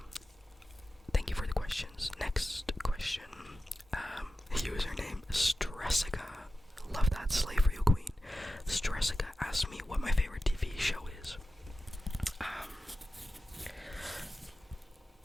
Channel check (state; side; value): normal; both; correlation 0.93